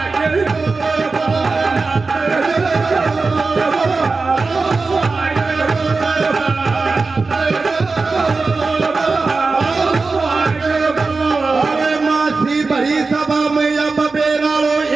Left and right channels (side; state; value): left; quieter; 4.0 dB